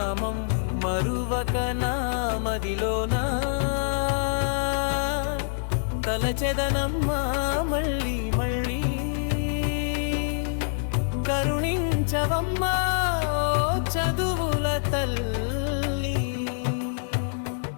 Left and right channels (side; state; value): right; silent; digital silence